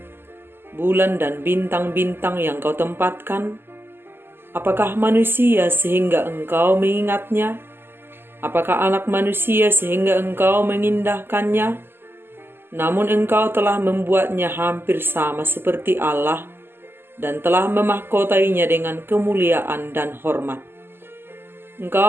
bulan dan bintang-bintang yang kau tempatkan, apakah manusia sehingga engkau mengingatnya? Apakah anak manusia sehingga engkau mengindahkannya? Namun engkau telah membuatnya hampir sama seperti Allah dan telah memahkotainya dengan kemuliaan dan hormat.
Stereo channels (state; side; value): late; left; 0.11 ms